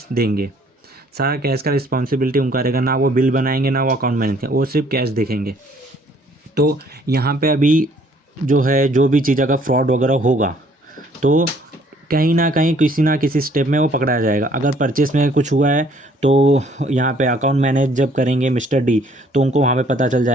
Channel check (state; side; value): normal; both; correlation 0.61